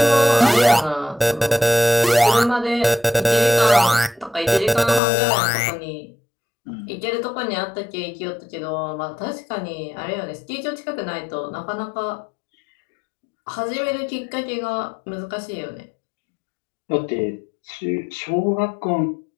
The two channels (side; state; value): right; drops out; at 5.0 s